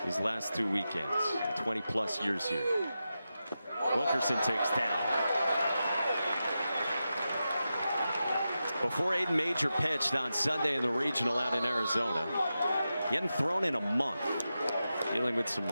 these last 2 weekends, 20+ years here. Wilkerson takes down. Before Aiden Major pitched on Sunday in the regional out in Arizona, he hadn't thrown in a month, dealing with some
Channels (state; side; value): inverted; both; correlation -0.91